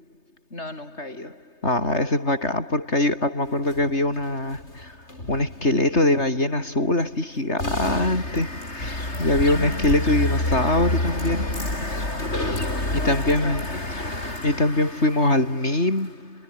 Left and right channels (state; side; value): late; right; 3.3 ms